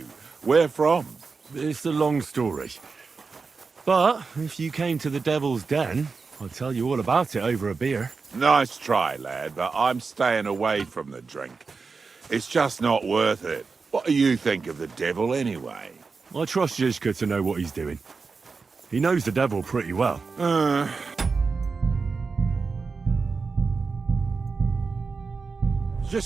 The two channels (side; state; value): left; quieter; 4.6 dB